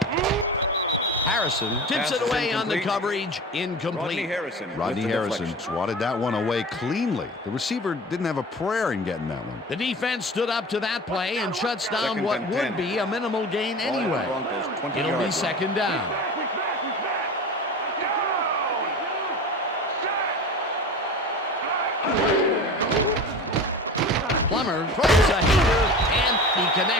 Harrison tips it away on the coverage. Incomplete. Rodney Harrison swatted that one away cleanly. The receiver didn't have a prayer in getting that one. The defense stood up to that play and shuts down what would be a minimal gain anyway. It'll be second down. Plummer throws a heater, and he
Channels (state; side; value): normal; both; correlation 0.33